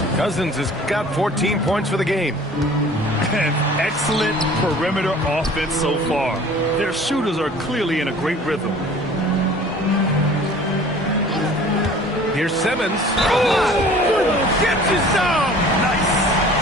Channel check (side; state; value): both; normal; correlation 0.47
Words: Cousins has got 14 points for the game. An excellent perimeter offense so far. Their shooters are clearly in a great rhythm. Here's Simmons. Oh, gets his down. Nice.